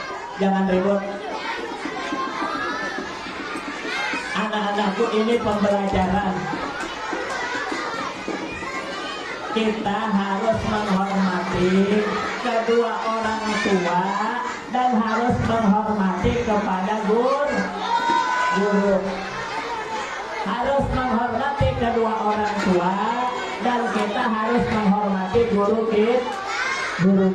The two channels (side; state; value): both; identical; correlation 1.00